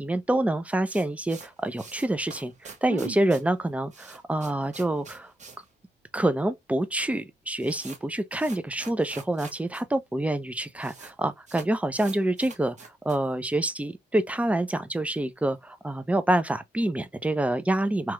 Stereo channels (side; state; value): both; normal; correlation 0.87